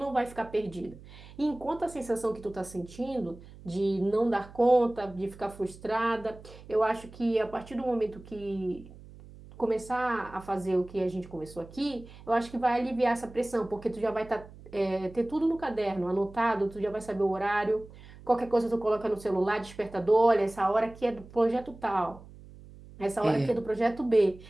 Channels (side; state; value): right; noise; hum, 19 dB below the sound